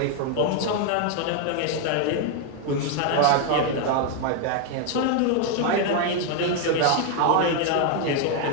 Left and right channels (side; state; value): both; different; correlation 0.01